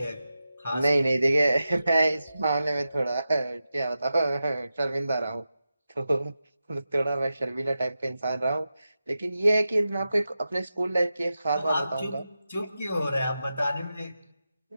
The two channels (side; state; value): both; inverted; correlation -0.91